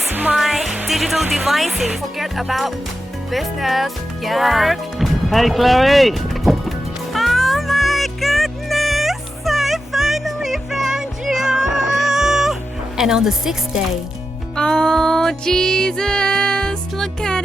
my digital devices. Forget about business, Yeah. work. Hey Chloe! Oh my goodness! I finally found you! And on the 6th day, oh Jesus! Look at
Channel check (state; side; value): normal; both; correlation 0.90